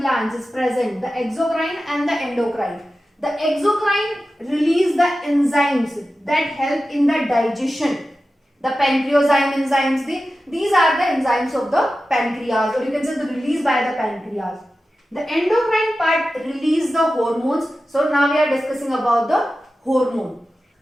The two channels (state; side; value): normal; both; correlation 0.93